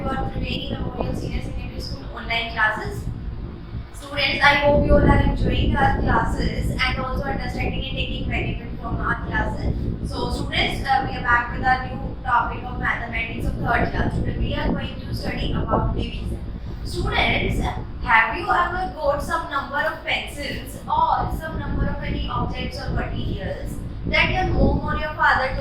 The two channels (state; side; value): identical; both; correlation 1.00